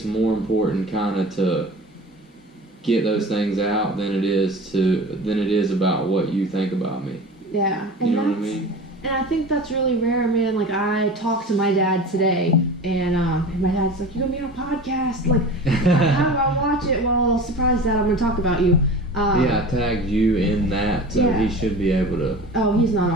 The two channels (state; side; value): normal; both; correlation 0.35